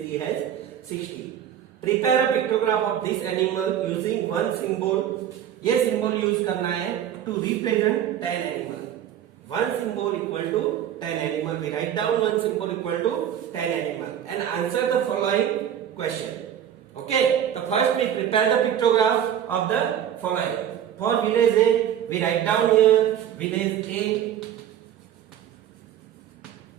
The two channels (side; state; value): left; quieter; 10.1 dB